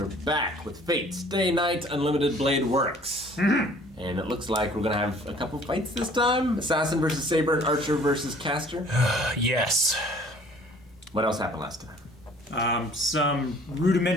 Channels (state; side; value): normal; both; correlation 0.53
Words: back with Fate Stay Night Unlimited Blade Works. And it looks like we're gonna have a couple fights this time. Assassin versus Saber and Archer versus Caster. Yes. What else happened last time? Some